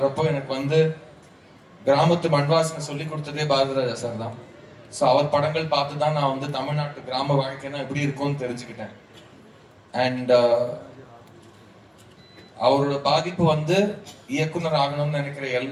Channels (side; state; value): both; identical; correlation 1.00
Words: எனக்கு வந்து கிராமத்து மண்வாசனை சொல்லி கொடுத்ததே பாரதிராஜா சார் தான். ஸோ அவர் படங்கள் பார்த்து தான் நான் வந்து தமிழ்நாட்டு கிராம வாழ்க்கைனா எப்படி இருக்கும்னு தெரிஞ்சுக்கிட்டேன். அண்ட் அவரோட பாதிப்பு வந்து இயக்குனர் ஆகணும்னு நினைக்கிற